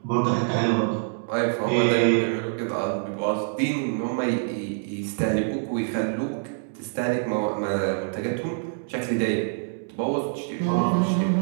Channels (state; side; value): silent; left; digital silence